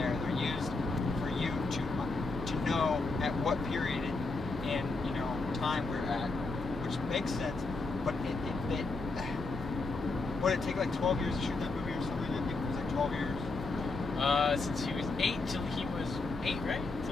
they're used for you to know at what period in time we're at, which makes sense, but what did it take, like 12 years to shoot that movie or something? I think it was like 12 years. Since he was 8 till he was 8, right?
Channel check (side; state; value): right; quieter; 3.6 dB